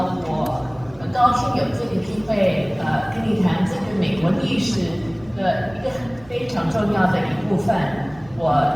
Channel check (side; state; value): right; noise; rumble, 24 dB below the sound